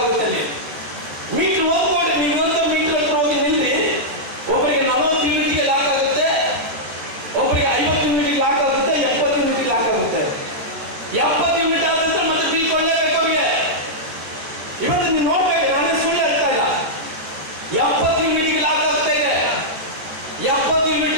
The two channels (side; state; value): left; late; 14 ms